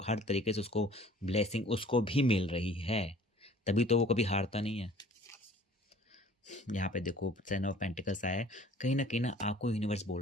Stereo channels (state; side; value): normal; both; correlation 0.51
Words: हर तरीके से उसको ब्लेसिंग उसको भी मिल रही है, तभी तो वो कभी हारता नहीं है। यहाँ पे देखो टेन ऑफ पेंटिकल्स आया है, कहीं ना आपको यूनिवर्स